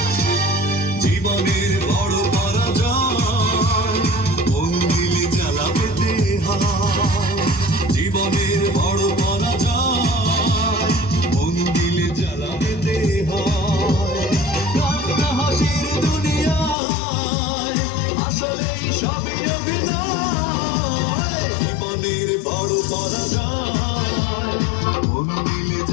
জীবনের বড় পরাজয় মন দিলে জ্বালা পেতে হয়, জীবনের বড় পরাজয় মন দিলে জ্বালা পেতে হয়। কান্না হাসির দুনিয়ায় আসলেই সবই অভিনয়, জীবনের বড় পরাজয় মন দিলে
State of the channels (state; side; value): drops out; right; at 16.8 s